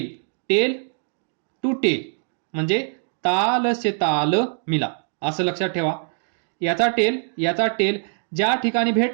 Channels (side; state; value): left; silent; digital silence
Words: टेल टू टेल, म्हणजे ताल से ताल मिला, असं लक्षात ठेवा. याचा टेल ज्या ठिकाणी